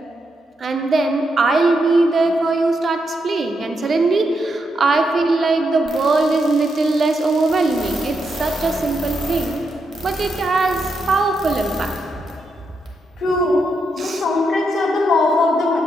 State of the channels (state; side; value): normal; both; correlation 0.82